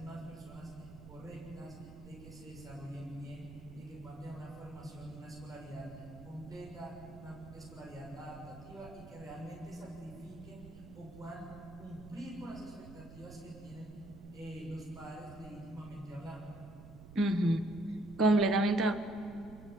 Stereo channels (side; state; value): right; noise; rumble, 15 dB below the sound